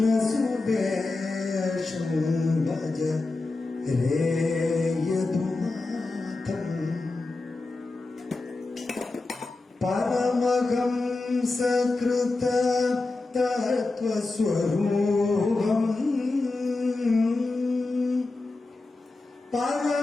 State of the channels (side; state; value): right; quieter; 3.4 dB